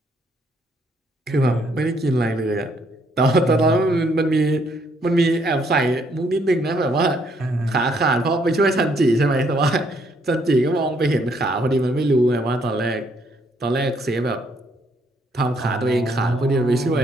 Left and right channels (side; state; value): both; normal; correlation 0.69